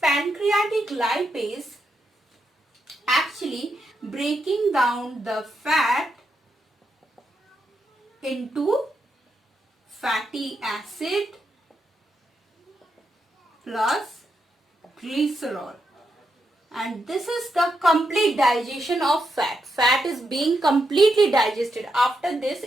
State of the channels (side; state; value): both; normal; correlation 0.83